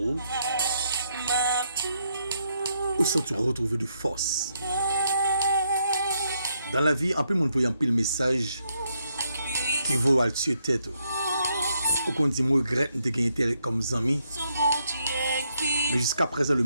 ou sont tu retrouver de force. Dans la vie, un peu mon peut y un pile message qui vaut à tuer tête. Ou qu'on dit moi regrette de gagner comme amis. Mais jusqu'à présent le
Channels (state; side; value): inverted; both; correlation -0.77